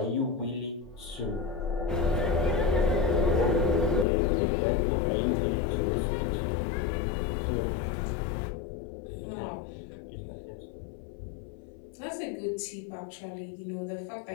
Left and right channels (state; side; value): drops out; right; at 4.0 s